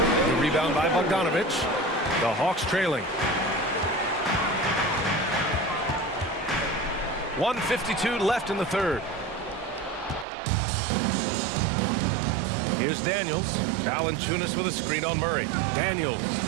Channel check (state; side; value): drops out; left; at 10.2 s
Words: rebound by Bogdanovich. The Hawks trailing. 1:52 left in the third. Here's Daniels. Valanciunas with a screen on Murray. Daniels.